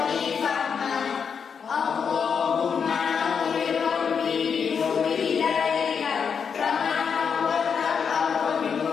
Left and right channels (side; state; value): right; quieter; 6.5 dB